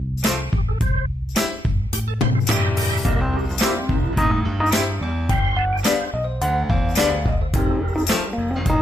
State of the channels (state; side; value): normal; both; correlation 0.83